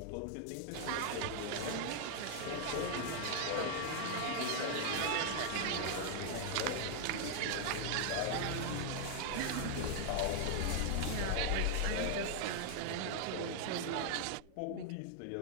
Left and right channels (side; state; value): both; different; correlation 0.00